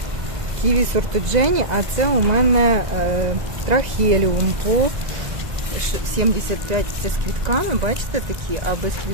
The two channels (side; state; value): left; late; 2.0 ms